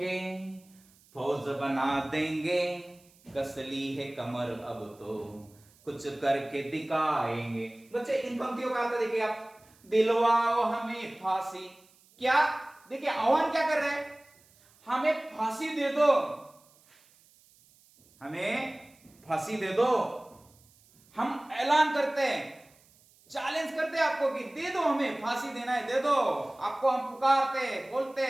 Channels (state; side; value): noise; right; hiss, 29 dB below the sound